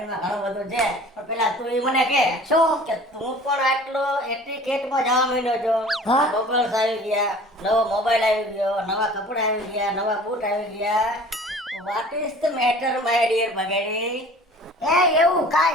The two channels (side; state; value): both; normal; correlation 0.46